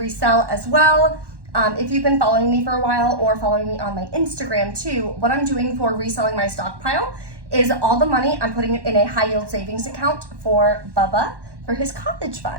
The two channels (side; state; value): left; late; 1.1 ms